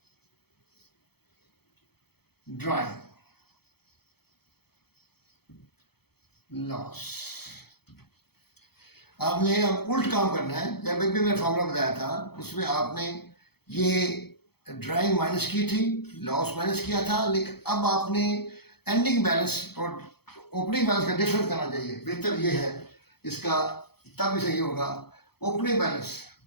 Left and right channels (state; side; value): late; right; 0.96 ms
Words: drawing loss। आपने अब उल्ट काम करना है। जब भी मैंने फॉर्मूला बताया था उसमें आपने ये ड्राइंग माइनस की थी, लॉस माइनस किया था, लेकिन अब आपने एंडिंग बैलेंस और ओपनिंग बैलेंस का डिफरेंस करना चाहिए। बेहतर ये है इसका, तब भी सही होगा opening balance,